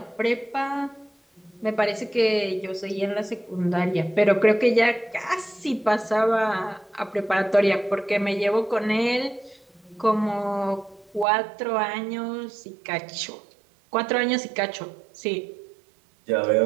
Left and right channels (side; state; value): left; drops out; at 11.2 s